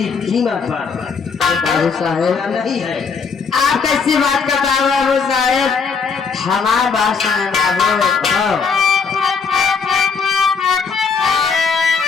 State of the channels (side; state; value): right; quieter; 5.5 dB